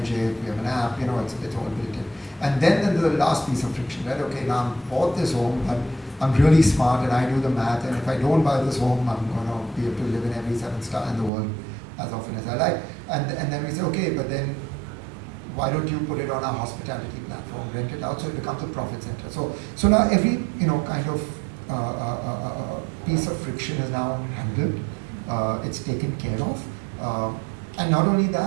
it, we have an app, you know, it's all built in. And then the last piece of friction, right? Okay, now I've bought this home, I'm really smart and I do the math, and if I don't buy this home, I'm going to be able to live in every 7-star in the world as often as I like. And then we say, okay, but then why don't you put it on our hospitality platform, rent it out, so it becomes a profit center. So now every, you know, kind of piece of friction is now handled, it's taken care of. And not only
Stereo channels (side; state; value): left; drops out; at 11.3 s